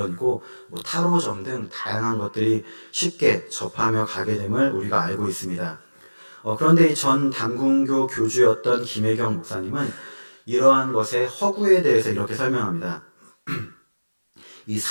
뭐 타로점 등 다양한 것들이 쉽게 접하며 가게 됨을 우리가 알고 있습니다. 그런데 이 전 단군교 교주였던 김혜경 목사님은 이러한 것의 허구에 대해서 이렇게 설명합니다. 이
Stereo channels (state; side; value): inverted; both; correlation -1.00